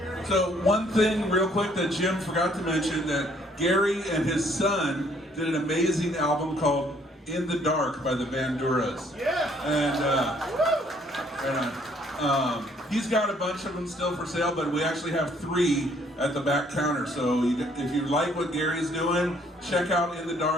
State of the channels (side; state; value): both; normal; correlation 0.64